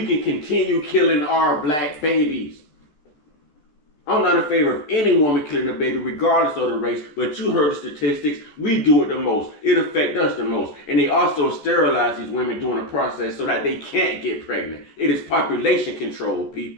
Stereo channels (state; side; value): late; right; 13 ms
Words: can continue killing our black babies. I'm not in favor of any woman killing a baby regardless of the race, but you heard the statistics. We do it the most. It affects us the most. And they also sterilize these women during the process so that they can't get pregnant. It is population control,